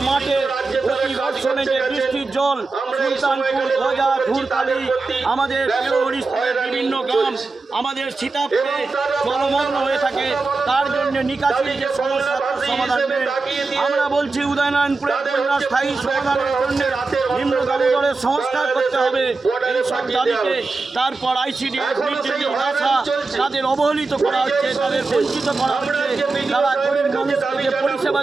মাঠে প্রতি বর্ষণে যে বৃষ্টির জল সুলতানপুর, গজা, ধূরকালি, আমাদের হরিশপুরের বিভিন্ন গ্রাম, আমাদের সীতাপুরে জলমগ্ন হয়ে থাকে, তার জন্য নিকাশির যে সমস্যা তার সমাধান নেই। আমরা বলছি উদয়নারায়ণপুরের বন্যা স্থায়ী সমাধানের জন্য নিম্ন দামোদরের সংস্কার করতে হবে। এইসব দাবিতে তারপর আইসিডিএস, আশা তাদের অবহেলিত করা হচ্ছে, তাদের বঞ্চিত করা হচ্ছে। তারা গরিব মানুষকে যে পরিষেবা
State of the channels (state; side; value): quieter; left; 3.8 dB